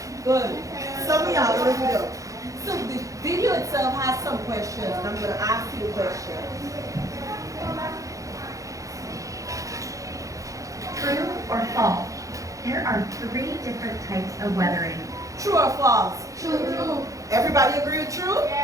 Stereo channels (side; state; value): left; late; 0.16 ms